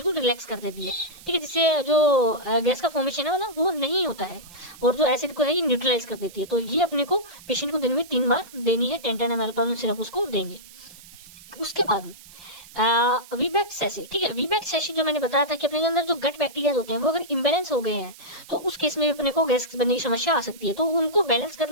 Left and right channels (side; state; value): right; noise; hiss, 20 dB below the sound